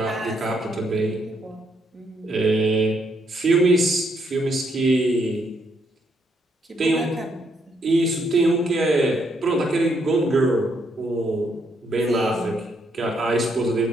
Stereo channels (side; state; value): both; normal; correlation 0.74